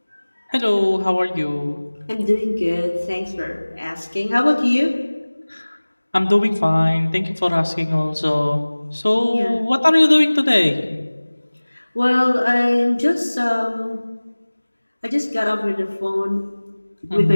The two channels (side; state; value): both; inverted; correlation -1.00